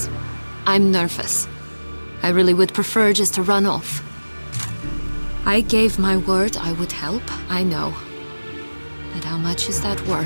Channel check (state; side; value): inverted; both; correlation -1.00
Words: I'm nervous. I really would prefer just to run off. I gave my word I would help, I know. But how much is that